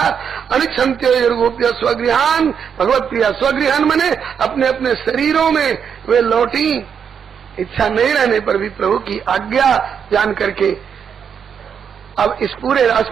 अनिच्छन्त्यो गोप्य स्वगृहान। भगवत प्रिया स्वगृहान मने अपने अपने शरीरों में वे लौटी, इच्छा नहीं रहने पर भी प्रभु की आज्ञा जान करके। अब इस पूरे रास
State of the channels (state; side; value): quieter; left; 7.3 dB